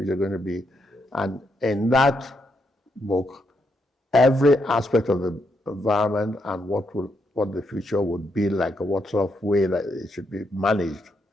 going to be? And in that book, every aspect of the environment and what the future would be like, or what sort of way that it should be managed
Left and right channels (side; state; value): both; normal; correlation 0.79